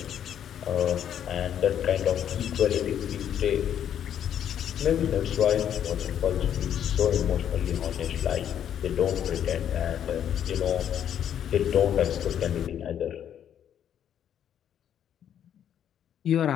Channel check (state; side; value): quieter; right; 9.6 dB